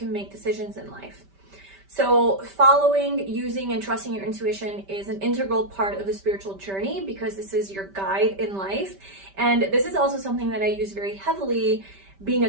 make decisions in life. So following, using, and trusting your intuition is an integral part of the spiritual journey because this is your guide in life. And this is also something that I use very heavily being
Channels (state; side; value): late; left; 5.1 ms